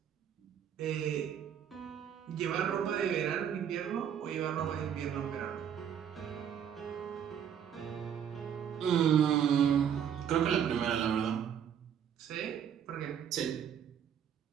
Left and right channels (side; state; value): left; quieter; 8.8 dB